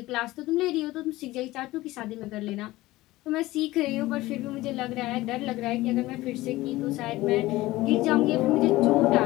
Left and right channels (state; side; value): quieter; right; 18.2 dB